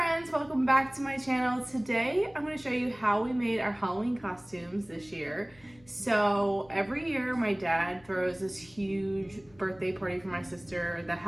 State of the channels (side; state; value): left; noise; hum, 27 dB below the sound